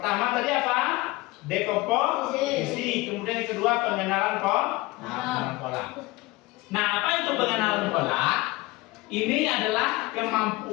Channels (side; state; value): right; quieter; 20.9 dB